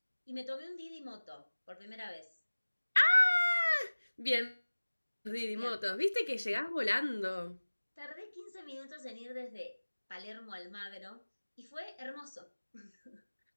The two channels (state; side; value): inverted; both; correlation -1.00